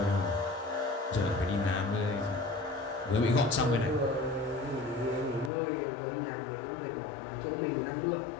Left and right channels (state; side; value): drops out; right; at 5.5 s